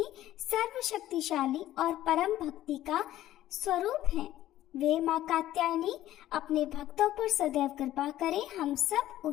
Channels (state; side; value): quieter; right; 13.8 dB